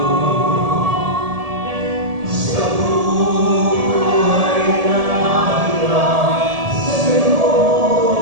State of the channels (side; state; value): left; late; 1.7 ms